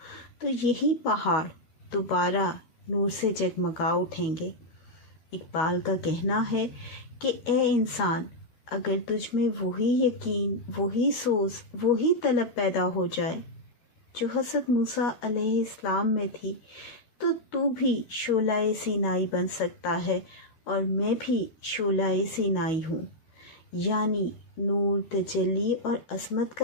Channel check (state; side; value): late; right; 12 ms